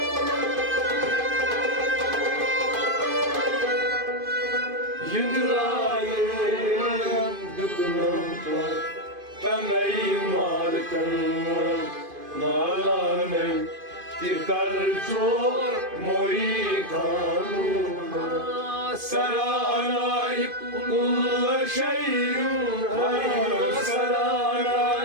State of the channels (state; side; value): late; left; 2.5 ms